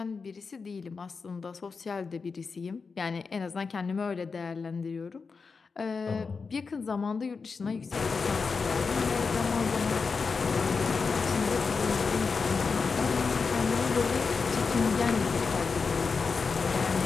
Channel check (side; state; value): right; quieter; 4.9 dB